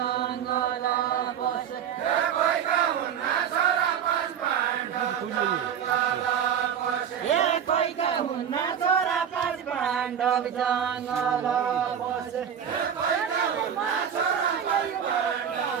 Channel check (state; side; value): quieter; left; 8.5 dB